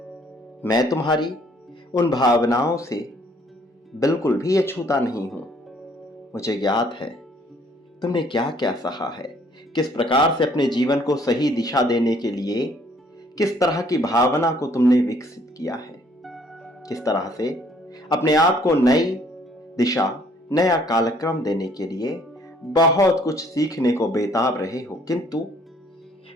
मैं तुम्हारी उन भावनाओं से बिल्कुल भी अछूता नहीं हूं। मुझे ज्ञात है तुमने क्या क्या सहा है, किस प्रकार से अपने जीवन को सही दिशा देने के लिए किस तरह की भावना को तुमने विकसित किया है, किस तरह से अपने आप को नई दिशा, नया कालक्रम देने के लिए बहुत कुछ सीखने को बेताब रहे हो। किंतु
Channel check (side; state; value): both; normal; correlation 0.62